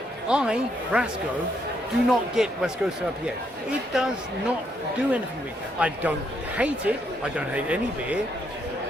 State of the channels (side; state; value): both; normal; correlation 0.75